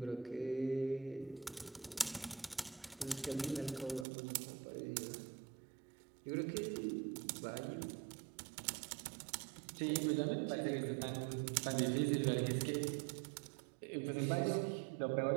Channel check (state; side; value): drops out; left; at 4.0 s